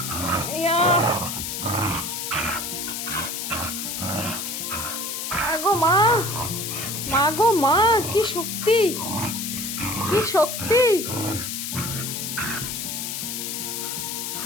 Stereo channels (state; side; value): noise; left; hiss, 4 dB below the sound